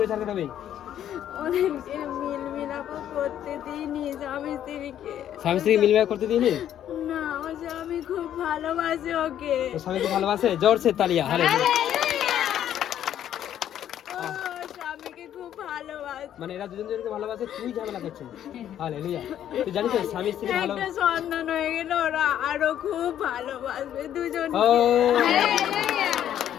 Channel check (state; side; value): quieter; right; 10.7 dB